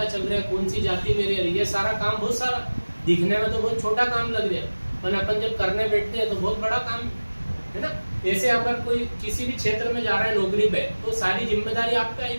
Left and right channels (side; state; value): both; inverted; correlation -1.00